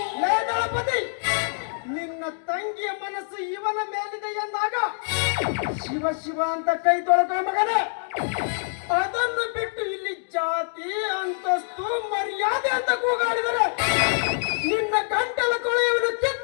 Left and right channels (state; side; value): silent; right; digital silence